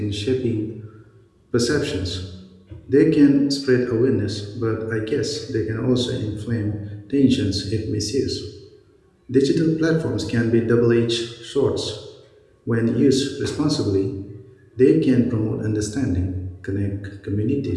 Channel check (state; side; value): identical; both; correlation 1.00